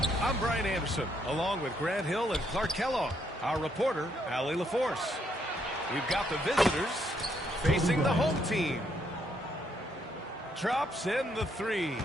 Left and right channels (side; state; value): both; normal; correlation 0.73